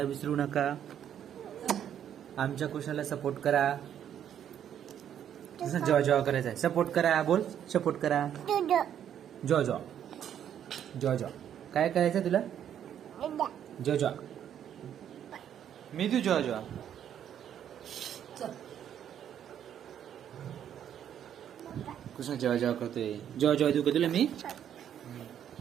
विसरू नका. आमच्या कृष्णाला सपोर्ट करा. जेव्हा जेव्हा करायचं आहे सपोर्ट करा. बोल, सपोर्ट करा. जॉ जॉ जॉ जॉ. काय करायचं तुला? जॉ जॉ. मी तू जॉ जॉ. कृष्णा जेव्हा जेव्हा करतोय. जेव्हा जेव्हा देऊ का तुला मी?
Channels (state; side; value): quieter; left; 9.7 dB